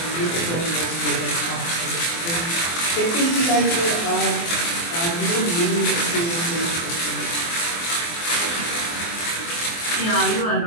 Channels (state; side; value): late; right; 24 ms